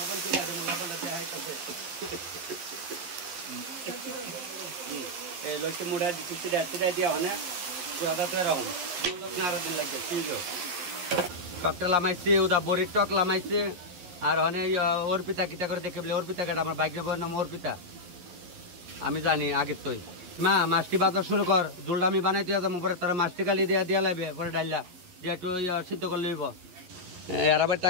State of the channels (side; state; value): left; late; 11 ms